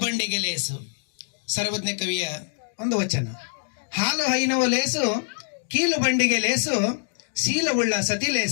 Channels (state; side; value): silent; right; digital silence